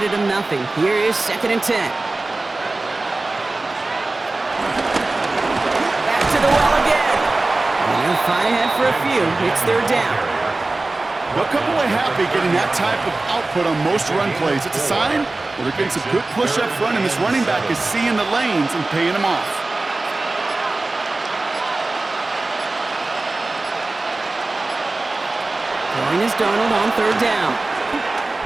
him nothing. Here is 2nd and 10. Back to the well again. And they'll fight ahead for a few. It's 3rd down. They'll come away happy getting that type of output on most run plays. It's a sign that they're getting some good push up front, and this running back is seeing the lanes and paying them off. Throwing is Darnold on 3rd down.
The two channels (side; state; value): left; quieter; 3.1 dB